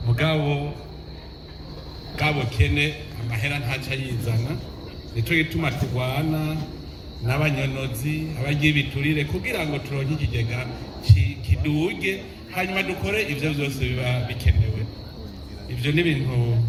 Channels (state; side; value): identical; both; correlation 1.00